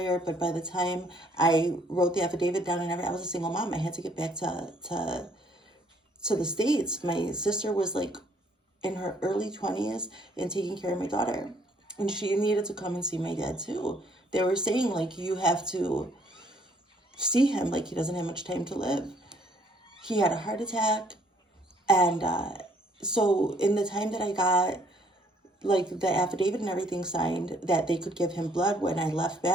but by the time I wrote the affidavit down and everything, I was a single mom. I had to get back to the States. My sister was like in her early 20s and taking care of my daughter, and she needed to come and see my dad too. They were saying, like, you have to see him, like, he doesn't have much time to live. He had a heart attack, and so in the time that I got, like, the affidavit and everything signed that they could give him blood when I left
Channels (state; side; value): normal; both; correlation 0.64